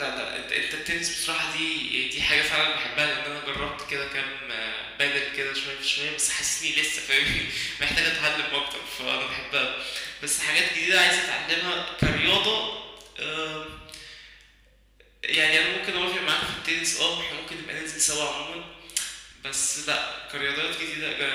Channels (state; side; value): identical; both; correlation 1.00